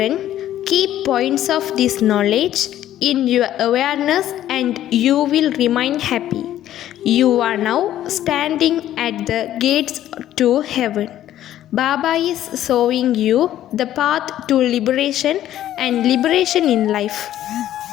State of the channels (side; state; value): right; quieter; 12.4 dB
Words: keep points of this knowledge in your awareness and you will remain happy. You are now standing at the gates to heaven. Baba is showing you the path to liberation and liberation in life.